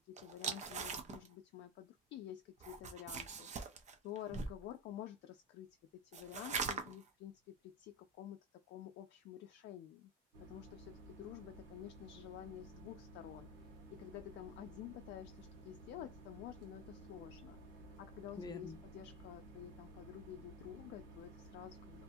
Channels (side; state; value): both; normal; correlation 0.13